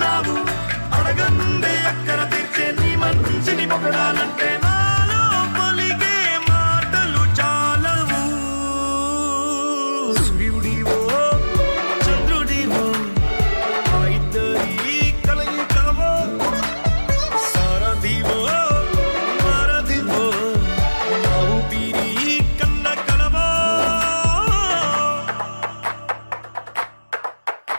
అడగందే అక్కర తీర్చే నీ మంచిని పొగడాలంటే నాలో పలికే మాటలు చాలవు సూర్యుడివో చంద్రుడివో ఆ ఇద్దరి కలయికవో సారథివో వారధివో నా ఊపిరి కన్న కలవో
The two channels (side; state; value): both; inverted; correlation -1.00